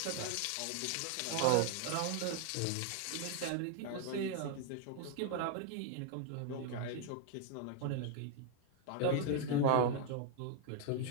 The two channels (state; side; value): different; both; correlation 0.00